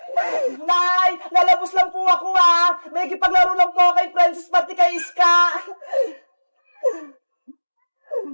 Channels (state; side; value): inverted; both; correlation -1.00